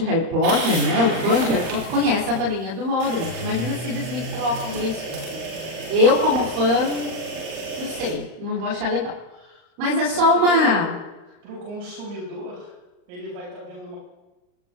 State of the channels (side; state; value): left; late; 38 ms